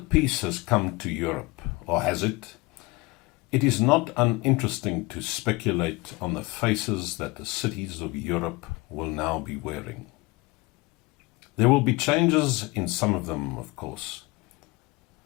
peace has come to Europe, or has it, it is not uninteresting to speculate on the faces that the cities of Europe will now be wearing. There will be changes in some of them, of course,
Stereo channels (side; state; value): right; quieter; 23.0 dB